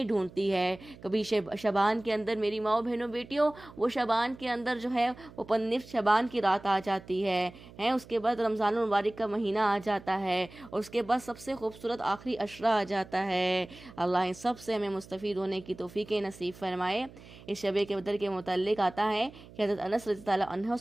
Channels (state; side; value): noise; right; hum, 20 dB below the sound